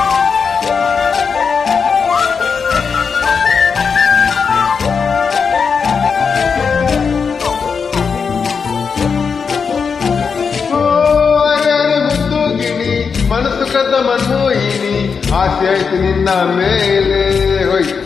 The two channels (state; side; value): quieter; right; 5.8 dB